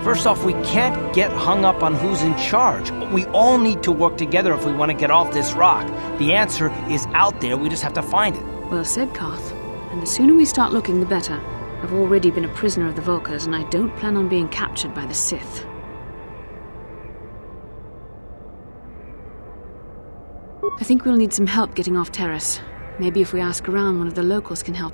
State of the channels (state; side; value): inverted; both; correlation -1.00